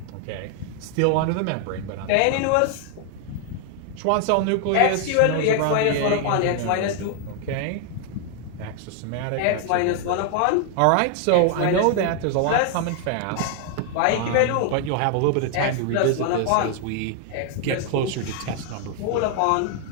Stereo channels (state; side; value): different; both; correlation 0.00